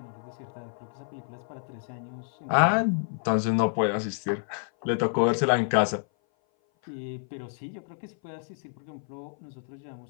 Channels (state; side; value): silent; right; 57 dB below the other